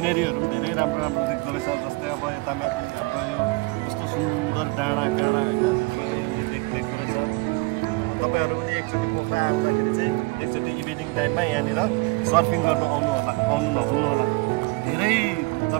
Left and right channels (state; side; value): quieter; left; 26.4 dB